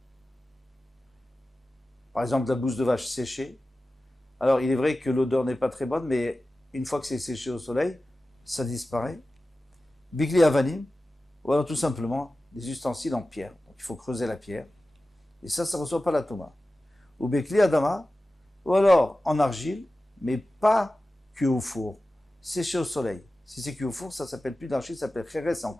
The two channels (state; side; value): normal; both; correlation 0.95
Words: par exemple la bouse de vache séchée. Alors il est vrai que l'odeur n'est pas très bonne, mais une fois que c'est séché au soleil, ça disparaît. Bigli avanim, ou alors tout simplement des ustensiles en pierre. Donc il faut creuser la pierre, et ça ne reçoit pas la touma. Ou bigli adama, ou alors en argile, mais pas cuit au four, séché au soleil. Si c'est cuit au four, ça s'appelle plus d'argile, ça s'appelle kheres, c'est